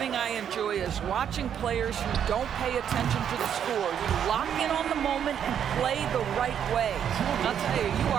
I enjoy is watching players who don't pay attention to the score. You lock in on the moment and play the right way. I'll tell you, you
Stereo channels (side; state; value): left; quieter; 8.8 dB